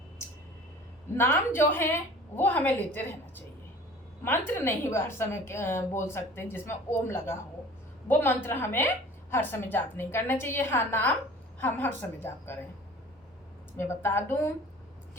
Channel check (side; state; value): both; normal; correlation 0.45